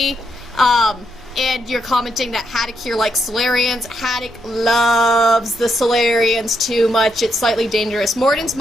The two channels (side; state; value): both; normal; correlation 0.79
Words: And you're commenting that Haddock here likes Solarians. Haddock loves the Solarians too much. It's slightly dangerous. Morden's